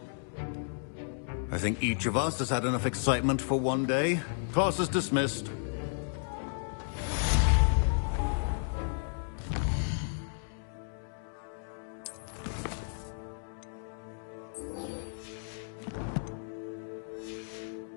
I think each of us has had enough excitement for one day. Class is dismissed.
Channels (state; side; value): silent; right; digital silence